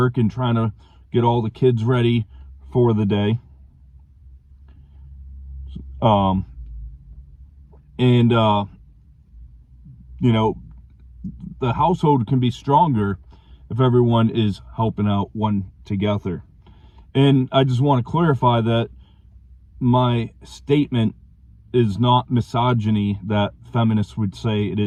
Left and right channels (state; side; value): identical; both; correlation 1.00